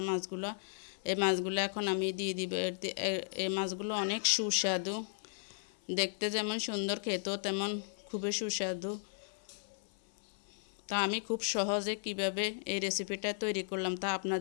মাছগুলো, এই মাছগুলো এখন আমি দিয়ে দিব। এই মাছগুলো অনেক সুস্বাদু, দেখতে যেমন সুন্দর, খেতেও তেমন খুবই সুস্বাদু। তা আমি খুব সহজে কিভাবে এই রেসিপিটা তৈরি করলাম তা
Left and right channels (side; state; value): right; silent; 54 dB below the other